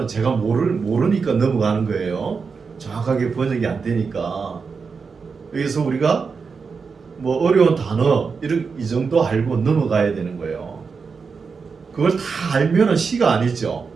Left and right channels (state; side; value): quieter; left; 5.2 dB